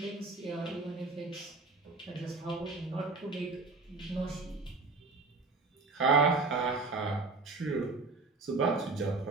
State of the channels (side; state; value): left; quieter; 3.8 dB